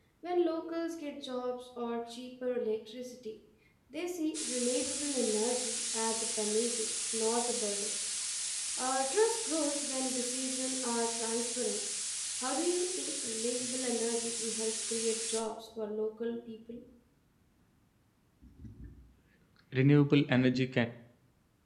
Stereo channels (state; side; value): identical; both; correlation 1.00